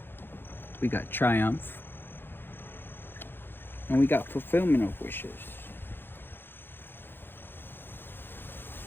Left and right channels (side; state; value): right; late; 0.10 ms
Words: We got triumph. And we got fulfillment of wishes.